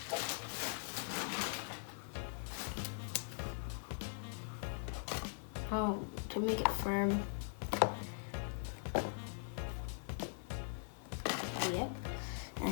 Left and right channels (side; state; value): right; silent; 50 dB below the other